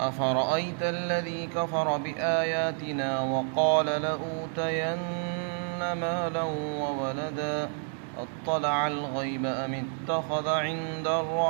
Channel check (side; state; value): left; silent; 58 dB below the other